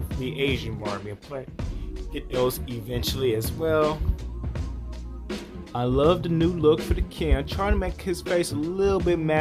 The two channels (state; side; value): identical; both; correlation 1.00